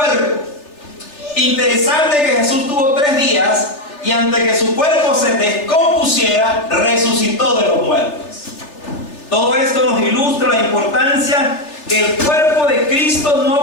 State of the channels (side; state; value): right; late; 3.4 ms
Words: Interesante que Jesús tuvo 3 días y antes que su cuerpo se descompusiera, resucitó de los muertos. Todo esto nos ilustra la importancia que el cuerpo de Cristo